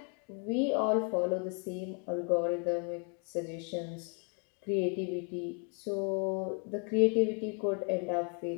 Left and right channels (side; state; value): right; quieter; 38.4 dB